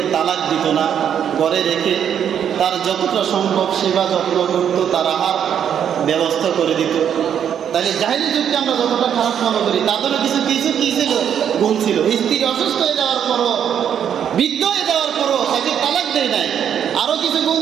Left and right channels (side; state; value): left; quieter; 8.8 dB